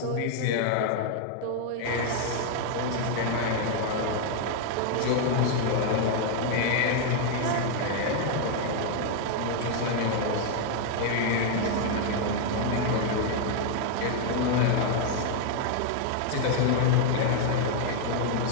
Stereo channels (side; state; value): both; different; correlation 0.00